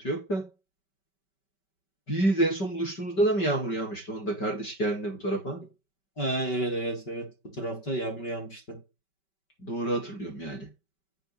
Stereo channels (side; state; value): right; late; 5.2 ms